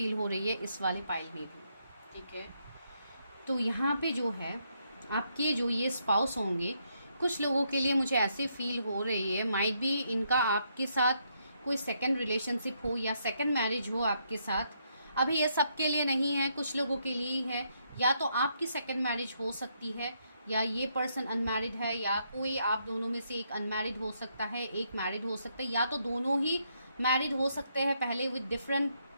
हो रही है इस वाले पाइल में भी, ठीक है। तो यहाँ पे जो है आपके जो ये स्पाउस होंगे, कुछ लोगों के लिए मुझे ऐसे फील हो रही है, माइट बी इनका आपके साथ कोई सेकंड रिलेशनशिप हो या सेकंड मैरिज हो आपके साथ। अभी ये सबके लिए नहीं है, कुछ लोगों के लिए ही है। या तो आपकी सेकंड मैरिज हो सकती है, या ये पर्सन अनमैरिड है, या कोई आप दोनों में से एक अनमैरिड हो सकता है, एक मैरिड हो सकता है, या तो दोनों ही मैरिड हो सकते हैं पहले विद डिफरेंट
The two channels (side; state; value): both; inverted; correlation -0.76